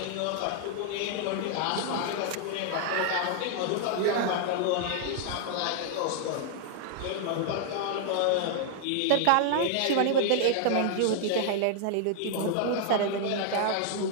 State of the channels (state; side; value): different; both; correlation -0.01